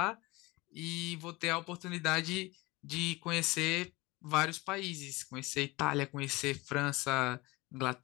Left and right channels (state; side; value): quieter; right; 22.4 dB